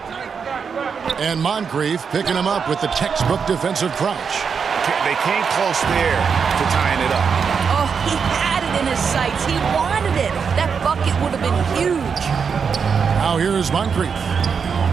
And Moncrief picking him up with the textbook defensive crouch. They came close there to tying it up. Oh, he had it in his sights. He wanted it. That bucket would have been huge. Now here is Moncrief.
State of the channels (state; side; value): quieter; left; 6.2 dB